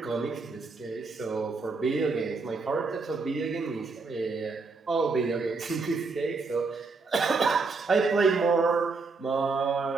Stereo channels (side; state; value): left; quieter; 4.2 dB